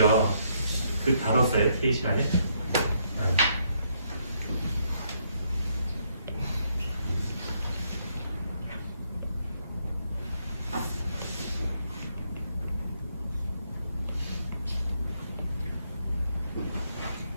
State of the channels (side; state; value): both; inverted; correlation -0.73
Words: 그 다뤘어요, TA 시간에.